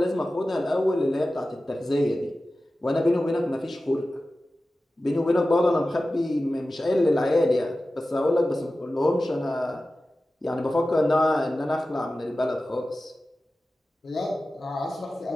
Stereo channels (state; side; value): normal; both; correlation 0.95